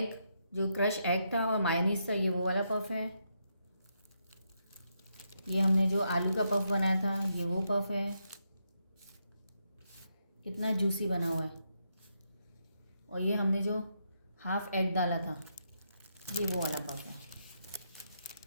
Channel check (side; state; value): both; inverted; correlation -0.80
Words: जो क्रश एग था और मायोनीज था, ये वो वाला पफ है। ये हमने जो आलू का पफ बनाया था, ये वो पफ है। कितना जूसी बना हुआ है। और ये हमने जो हाफ एग डाला था, ये वो वाला पफ है।